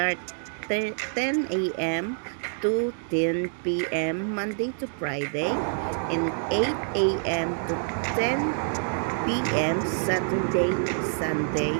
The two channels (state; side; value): silent; left; digital silence